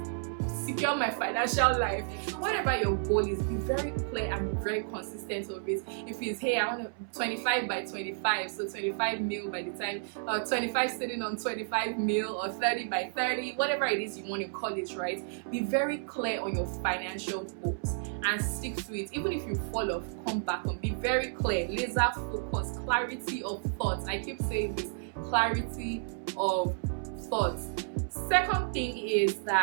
secure my financial life. Whatever your goal is, be very clear and be very consistent of it. If it's, hey, I want 25 by 25, so 25 mil by the time, 25 sitting on 25 mil, or 30 by 30, whatever it is you want to call it, right? Be very clear on your financial goals and stick to it. Even if you fall off, come back on. Be very clear, laser focus, clarity of thoughts. I keep saying this, clarity of thoughts. Second thing is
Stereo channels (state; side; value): silent; left; 57 dB below the other